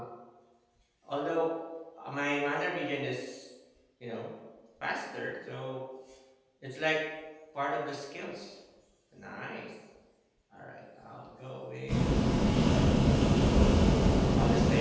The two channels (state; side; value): identical; both; correlation 1.00